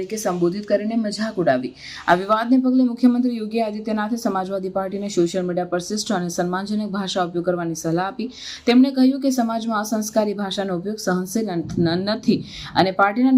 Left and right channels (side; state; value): both; identical; correlation 1.00